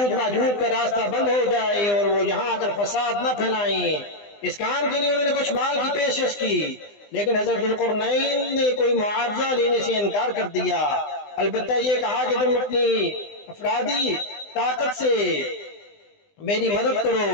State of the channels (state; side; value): late; right; 20 ms